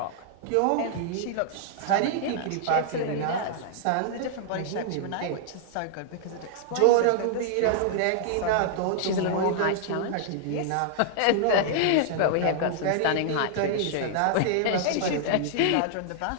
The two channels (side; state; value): both; different; correlation -0.01